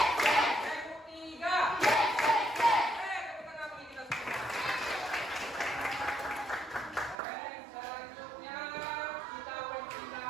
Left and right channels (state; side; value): drops out; left; at 7.2 s